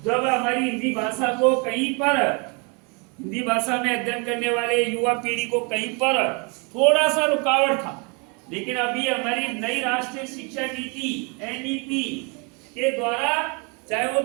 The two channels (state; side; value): quieter; left; 31.9 dB